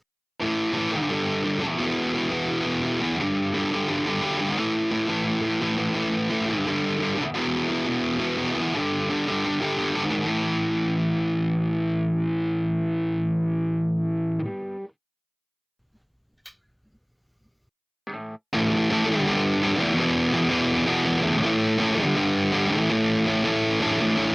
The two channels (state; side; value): identical; both; correlation 1.00